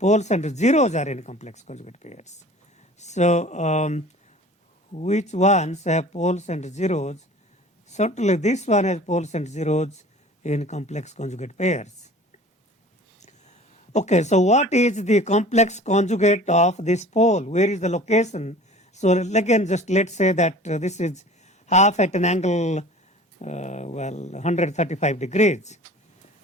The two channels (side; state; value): both; normal; correlation 0.44